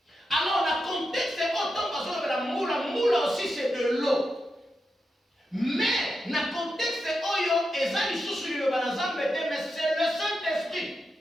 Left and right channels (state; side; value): normal; both; correlation 0.88